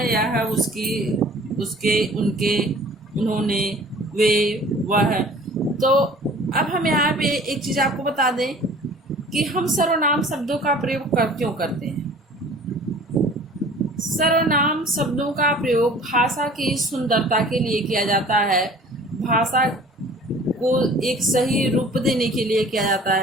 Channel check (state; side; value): normal; both; correlation 0.48